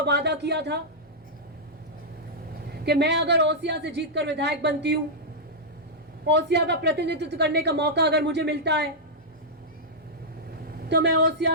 वादा किया था कि मैं अगर ओसिया से जीतकर विधायक बनती हूँ, ओसिया का प्रतिनिधित्व करने का मौका अगर मुझे मिलता है, तो मैं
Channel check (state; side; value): normal; both; correlation -0.08